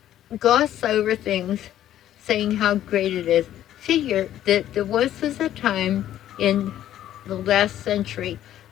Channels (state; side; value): quieter; right; 12.0 dB